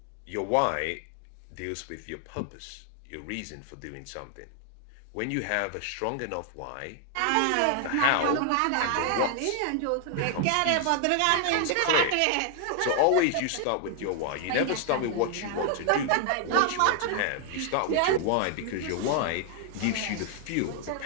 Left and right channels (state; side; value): different; both; correlation 0.00